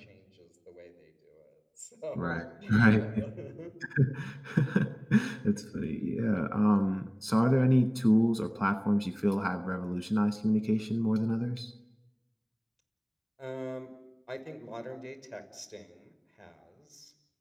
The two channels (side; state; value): both; identical; correlation 1.00